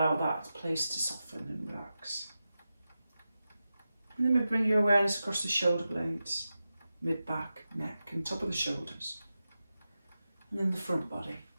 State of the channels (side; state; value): both; inverted; correlation -0.92